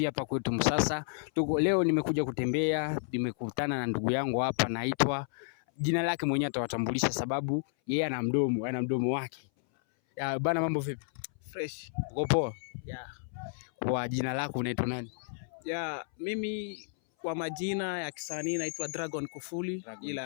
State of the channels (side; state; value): right; silent; 57 dB below the other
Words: hapa kwetu Msasa. Leo nimekuja kutembea, nimekutana na ndugu yangu hapa, naitwa jina lake mwenyewe atawatambulisha sababu yeye ana mdomo wake. Bana, mambo vipi? Fresh. Uko poa? Yeah. Kwa jina lako unaitwa nani? Mimi kwa majina ya kisanii naitwa Dragon Kufuli,